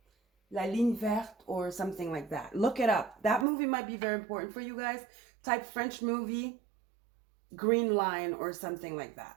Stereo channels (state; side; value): drops out; left; at 3.5 s